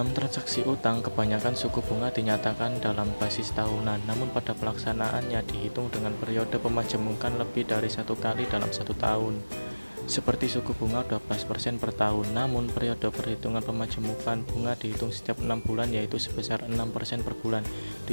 transaksi utang, kebanyakan suku bunga dinyatakan dalam basis tahunan, namun pada pelaksanaannya dihitung dengan periode pemajemukan lebih dari satu kali dalam satu tahun. Seperti suku bunga 12% per tahun, namun periode perhitungan pemajemukan bunga dihitung setiap 6 bulan, yaitu sebesar 6% per bulan.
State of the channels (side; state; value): both; inverted; correlation -1.00